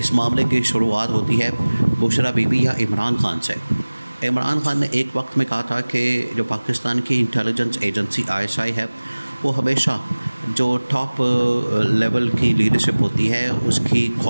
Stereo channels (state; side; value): inverted; both; correlation -1.00